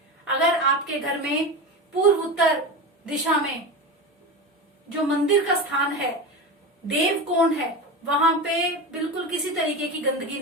अगर आपके घर में पूर्व उत्तर दिशा में जो मंदिर का स्थान है, देव कोण है, वहां पे बिल्कुल किसी तरीके की गंदगी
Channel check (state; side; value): normal; both; correlation 0.24